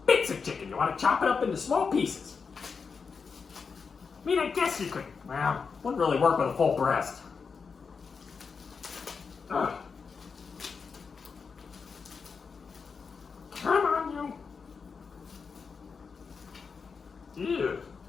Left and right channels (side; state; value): right; quieter; 5.4 dB